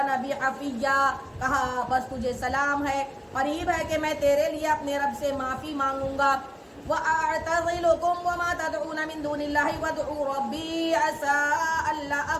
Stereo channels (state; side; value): identical; both; correlation 1.00